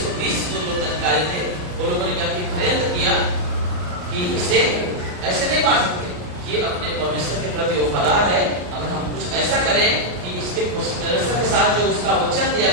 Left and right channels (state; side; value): late; left; 33 ms